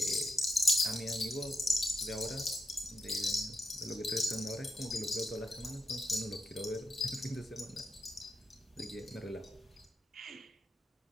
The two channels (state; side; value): normal; both; correlation 0.84